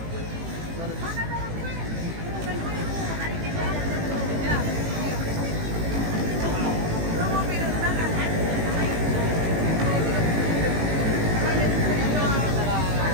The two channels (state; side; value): late; left; 18 ms